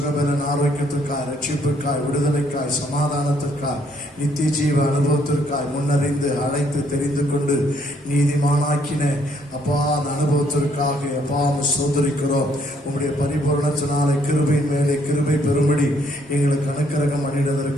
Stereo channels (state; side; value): normal; both; correlation 0.68